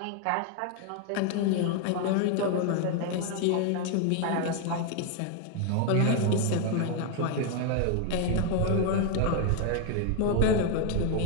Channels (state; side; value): different; both; correlation 0.01